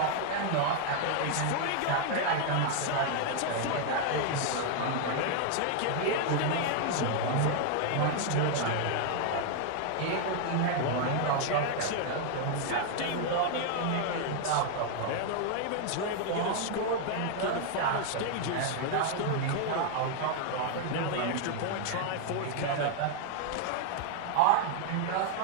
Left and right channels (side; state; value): both; different; correlation 0.00